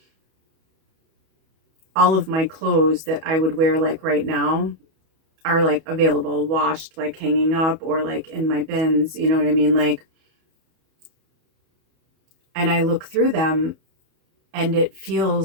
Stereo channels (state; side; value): late; left; 31 ms